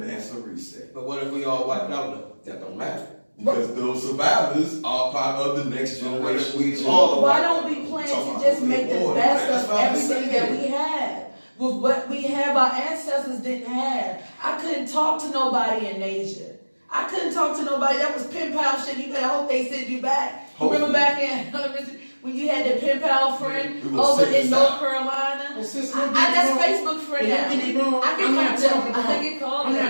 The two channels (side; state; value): both; inverted; correlation -1.00